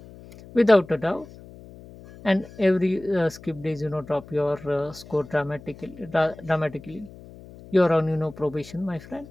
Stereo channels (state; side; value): noise; left; hum, 19 dB below the sound